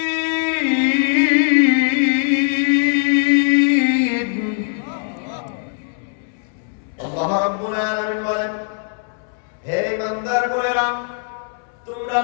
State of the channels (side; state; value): right; silent; 66 dB below the other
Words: আল্লাহ রাব্বুল আলামিন বলেন, হে ইমানদার গোয়েরা, তোমরা